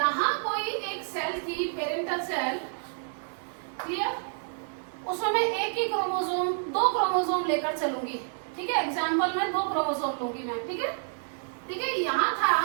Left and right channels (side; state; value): left; silent; digital silence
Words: कोई एक सेल थी पेरेंटल सेल, क्लियर, उसमें मैं एक ही क्रोमोसोम 2 क्रोमोसोम लेकर चलूंगी। ठीक है, एग्जाम्पल में 2 क्रोमोसोम लूंगी मैं। ठीक है, ठीक है, यहाँ था,